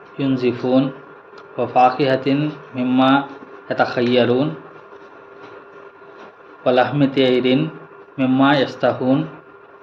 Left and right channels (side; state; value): both; identical; correlation 1.00